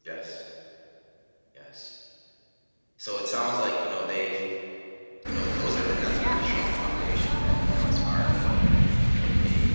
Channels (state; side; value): inverted; both; correlation -1.00